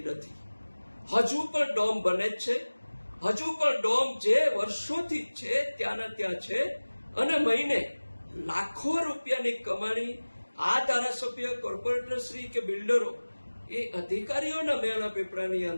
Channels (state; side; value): inverted; both; correlation -1.00